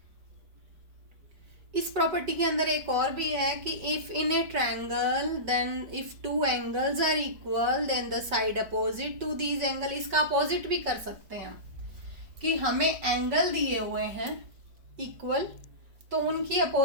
इस property के अंदर एक और भी है कि if in a triangle then if two angles are equal then the side opposite to these angle, इसका अपोजिट भी कर सकते हैं हम कि हमें एंगल दिए हुए हैं इक्वल, तो उनकी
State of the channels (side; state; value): left; late; 5.4 ms